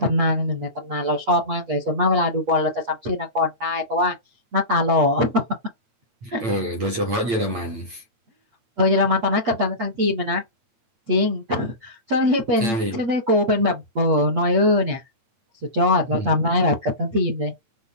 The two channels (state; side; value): late; left; 8.8 ms